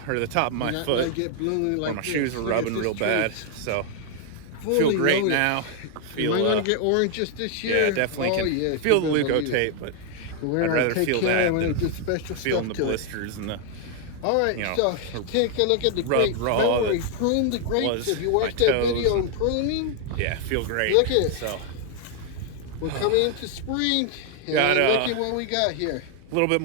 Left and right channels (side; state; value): both; different; correlation 0.00